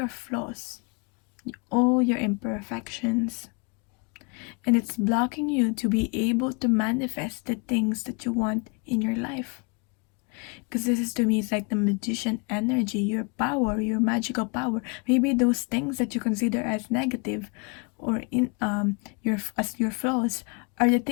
flaws, all your imperfections. And it's blocking you to be able to manifest the things that you want in your life. Because this is, to me, it's like the magician energy, your power, your magical power. Maybe those things that you consider as negative or your flaws are the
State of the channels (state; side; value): quieter; right; 32.2 dB